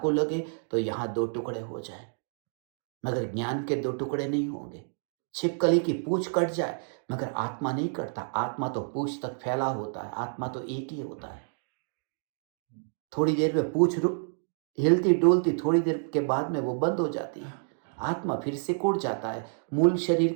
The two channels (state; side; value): silent; left; digital silence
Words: लगे तो यहां 2 टुकड़े हो जाए, मगर ज्ञान के 2 टुकड़े नहीं होंगे। छिपकली की पूंछ कट जाए, मगर आत्मा नहीं कटता। आत्मा तो पूंछ तक फैला होता है, आत्मा तो एक ही होता है। थोड़ी देर में पूंछ हिलती डोलती, थोड़ी देर के बाद में वो बंद हो जाती है। आत्मा फिर से कुड़ जाता है, मूल शरीर